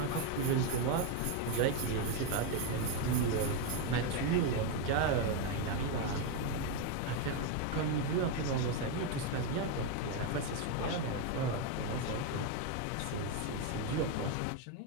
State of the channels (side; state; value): both; different; correlation 0.02